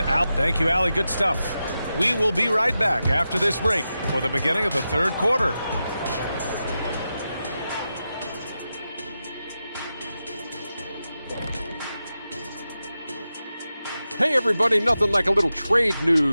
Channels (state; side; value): inverted; both; correlation -0.91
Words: Al. Thank you, Allie. Good stuff. We will be right back after this break for the beginning of the third quarter. Hey everybody, nothing like a little trade